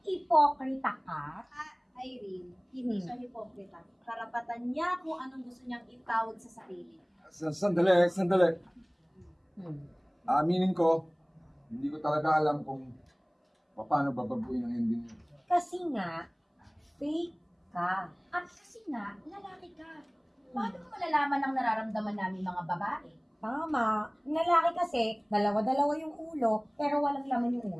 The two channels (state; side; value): identical; both; correlation 1.00